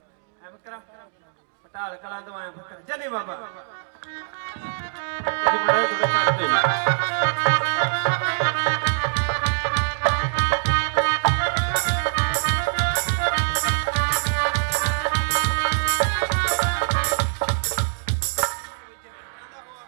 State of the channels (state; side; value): silent; left; digital silence